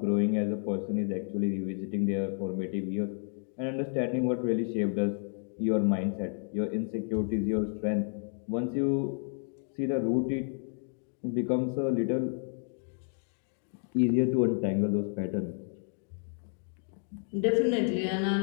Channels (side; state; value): right; silent; 57 dB below the other